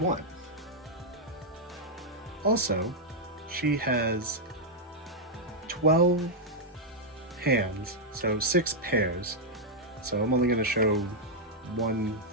Also, she has 12 hands, so 6 pairs. So I'm only going to show one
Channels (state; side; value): normal; both; correlation -0.03